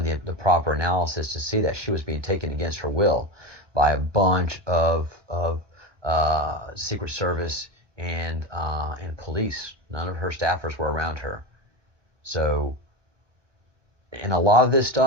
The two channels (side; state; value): left; late; 1.1 ms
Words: the proper analysis to see that she was being taken against her will by a bunch of Secret Service and police. None of her staffers were around her. So, and a lot of this